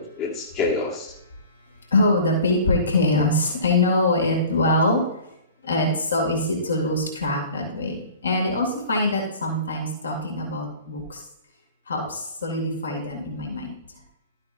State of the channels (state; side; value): inverted; both; correlation -0.42